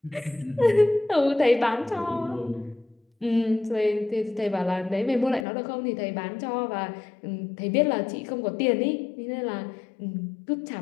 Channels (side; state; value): right; drops out; at 5.5 s